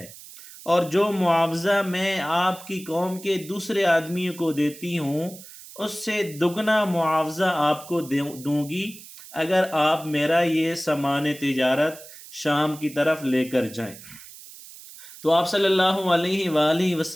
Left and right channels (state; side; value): noise; right; hiss, 17 dB below the sound